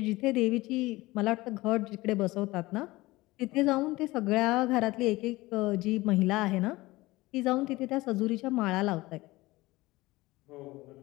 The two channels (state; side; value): quieter; right; 19.9 dB